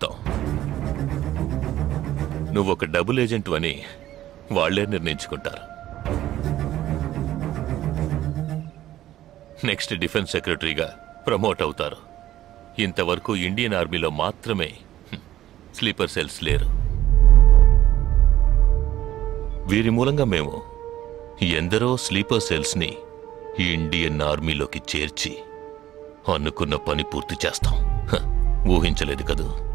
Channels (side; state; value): left; quieter; 13.5 dB